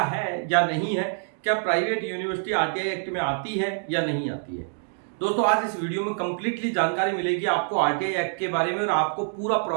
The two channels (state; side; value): silent; left; digital silence